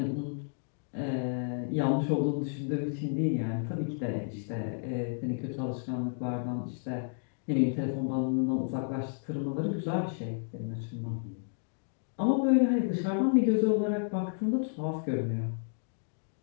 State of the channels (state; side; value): silent; right; digital silence